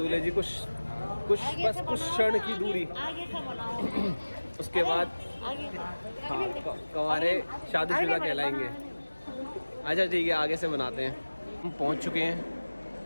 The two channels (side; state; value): both; inverted; correlation -1.00